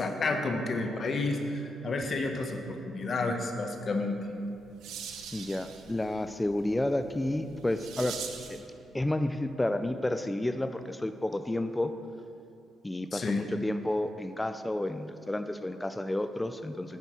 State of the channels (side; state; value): both; normal; correlation 0.90